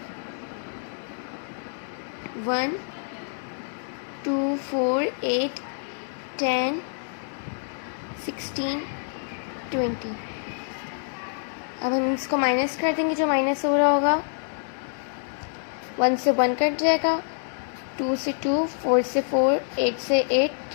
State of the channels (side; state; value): right; silent; digital silence